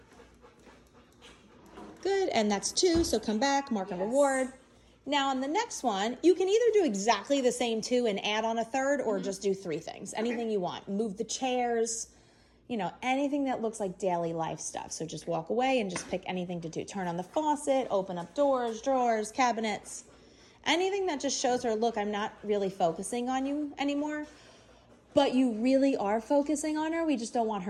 Good, and that's 2, so come back, mark and reward. Now on the next one, you can either do exactly the same 2 and add on a third, or just do 3 things, anything you want. Move the chairs, you know, anything that looks like daily life stuff. So just walk away and just pick anything to do. Turn on the faucet, open up doors, drawers, cabinets, anything that just shows her, look, I'm not really focusing on you anymore. But you really are focusing on her. We just don't want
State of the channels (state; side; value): identical; both; correlation 1.00